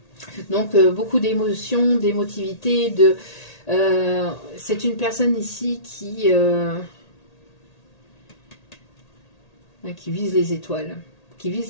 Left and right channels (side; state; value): right; late; 1.8 ms